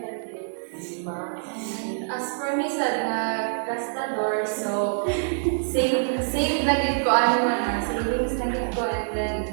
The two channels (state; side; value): silent; left; digital silence